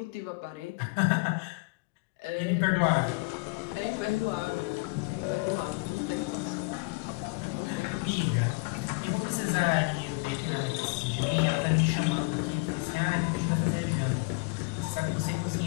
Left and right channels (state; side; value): quieter; right; 28.2 dB